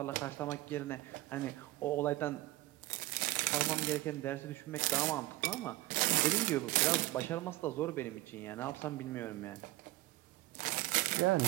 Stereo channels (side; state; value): left; quieter; 18.3 dB